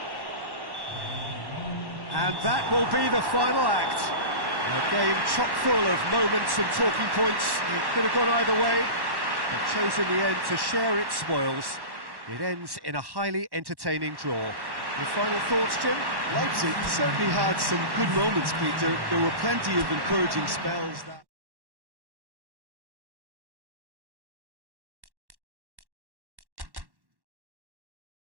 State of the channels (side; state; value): left; late; 1.1 ms